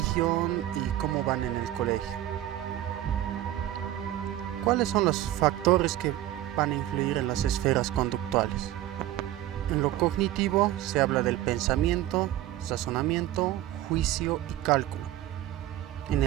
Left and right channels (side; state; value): left; quieter; 13.9 dB